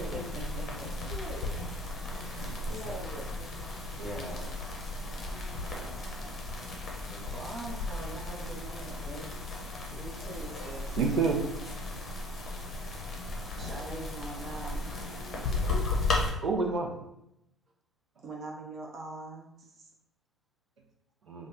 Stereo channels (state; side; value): normal; both; correlation 0.48